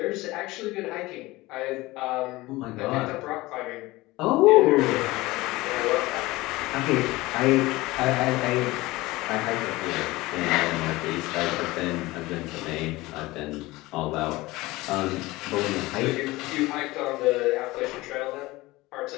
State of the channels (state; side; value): quieter; right; 20.0 dB